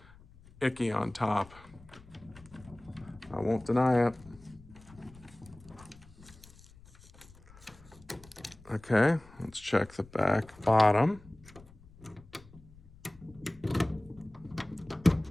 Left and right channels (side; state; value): left; noise; rumble, 23 dB below the sound